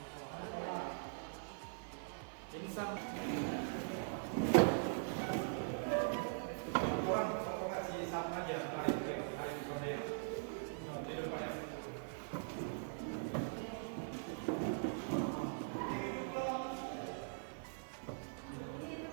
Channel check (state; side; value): silent; left; digital silence